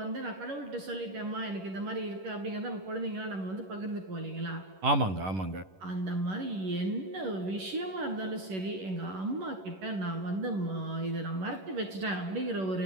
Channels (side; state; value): left; late; 11 ms